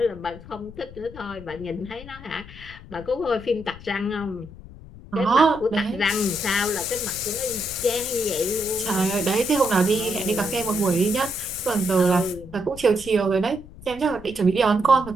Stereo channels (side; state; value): left; noise; rumble, 17 dB below the sound